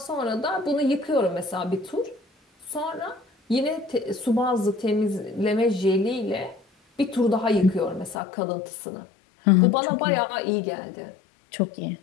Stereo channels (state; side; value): drops out; right; at 8.2 s